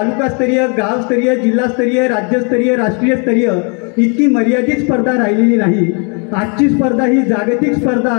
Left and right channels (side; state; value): right; quieter; 36.5 dB